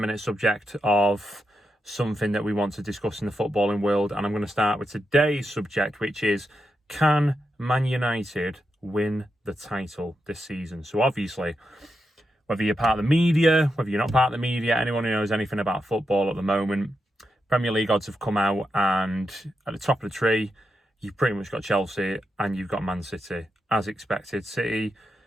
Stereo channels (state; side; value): normal; both; correlation 0.86